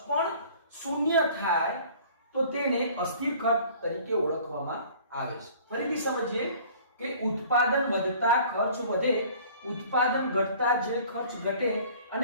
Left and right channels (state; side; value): inverted; both; correlation -0.50